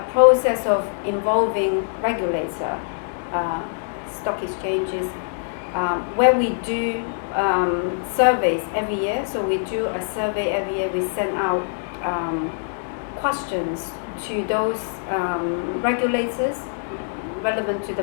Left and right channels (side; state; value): right; silent; digital silence